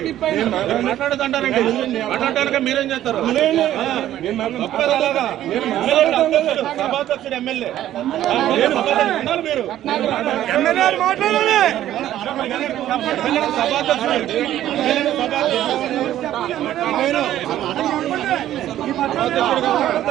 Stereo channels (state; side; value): quieter; left; 12.6 dB